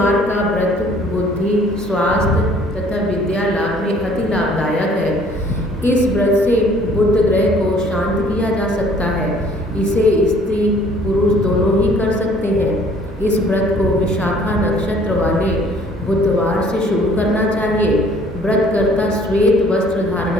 का व्रत बुद्धि, स्वास्थ्य तथा विद्या लाभ में अति लाभदायक है। इस व्रत से बुध ग्रह को शांत किया जा सकता है। इसे स्त्री पुरुष दोनों ही कर सकते हैं। इस व्रत को विशाखा नक्षत्र वाले बुधवार से शुरू करना चाहिए। व्रतकर्ता श्वेत वस्त्र धारण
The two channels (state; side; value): normal; both; correlation 0.57